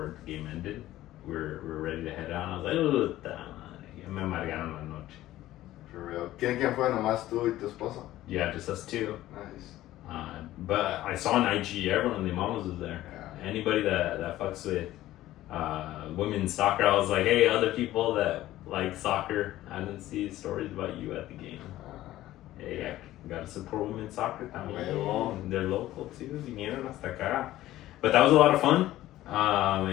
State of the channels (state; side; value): quieter; right; 15.0 dB